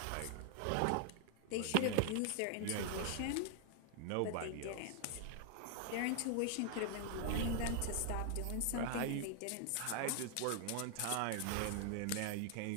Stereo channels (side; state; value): both; different; correlation 0.00